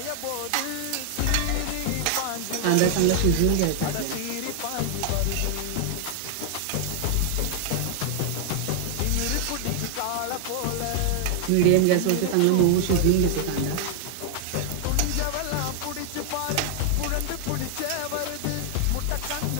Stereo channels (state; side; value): different; both; correlation 0.00